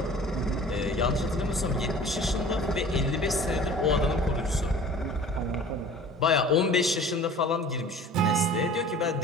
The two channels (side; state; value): both; normal; correlation 0.44